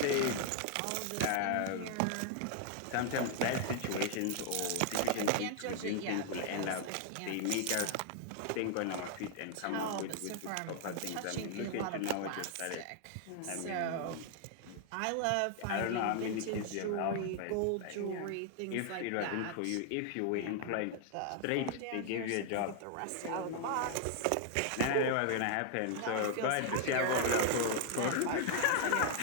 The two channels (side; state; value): both; different; correlation 0.00